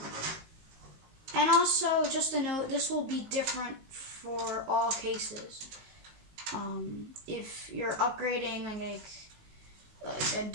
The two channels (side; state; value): left; late; 19 ms